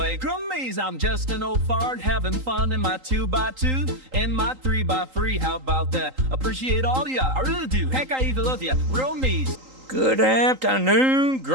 Grummies, I'm just an old fart having fun in my 2x2 and my 3x3. How about that? Appreciate all ya, I really do. Heck, I even love ya. Grummies. Good afternoon,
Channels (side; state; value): left; late; 3.8 ms